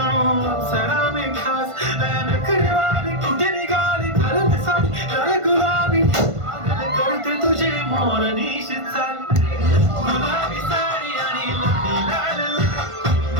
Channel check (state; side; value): late; left; 1.5 ms